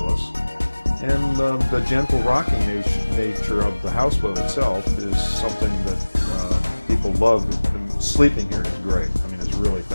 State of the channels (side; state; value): both; inverted; correlation -1.00